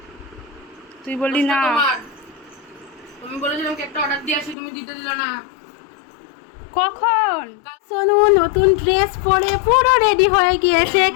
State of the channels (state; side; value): drops out; right; at 4.5 s